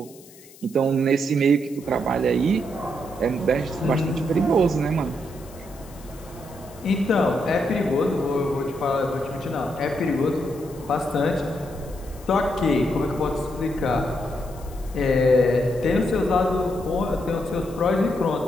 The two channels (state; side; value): noise; left; hiss, 22 dB below the sound